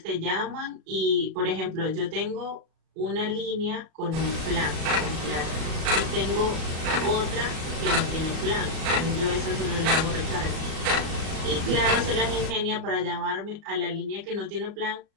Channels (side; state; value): left; late; 37 ms